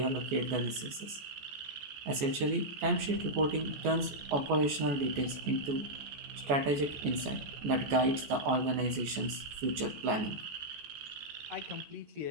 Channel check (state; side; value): late; left; 14 ms